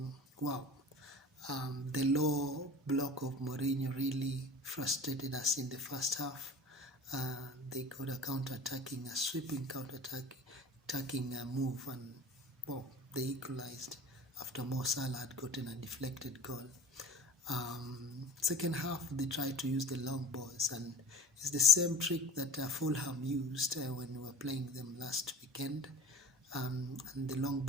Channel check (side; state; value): both; normal; correlation 0.37